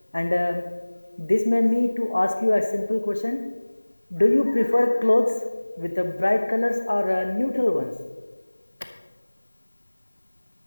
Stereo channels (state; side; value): inverted; both; correlation -1.00